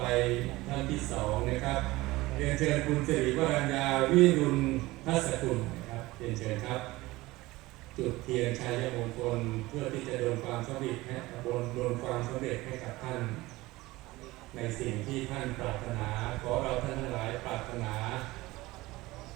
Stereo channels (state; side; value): quieter; left; 19.6 dB